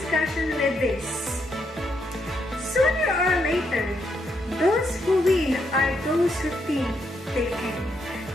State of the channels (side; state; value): both; normal; correlation 0.78